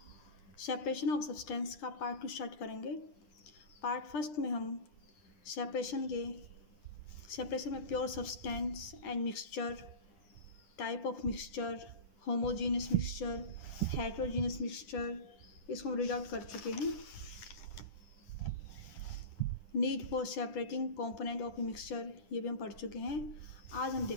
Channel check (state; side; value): late; right; 10 ms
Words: सेपरेशन ऑफ सब्सटेंस का पार्ट 2 स्टार्ट करेंगे। पार्ट फर्स्ट में हम सेपरेशन में pure substance and mixture, type of mixture, homogeneous mixture, heterogeneous mixture, इसको हम रीड आउट कर चुके हैं। Need for separating component of a mixture, ये भी हम पढ़ चुके हैं। आज हम